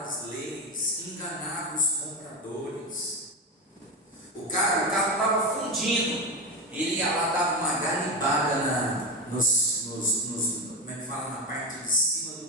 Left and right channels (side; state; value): both; normal; correlation 0.17